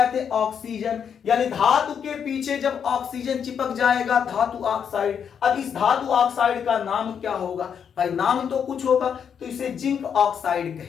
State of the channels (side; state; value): right; quieter; 7.6 dB